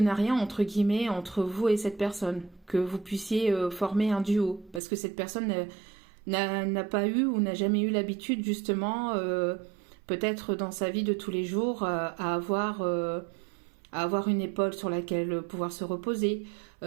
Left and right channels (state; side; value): drops out; left; at 4.8 s